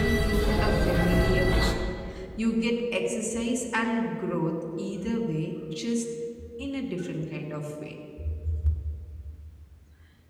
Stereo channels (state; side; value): identical; both; correlation 1.00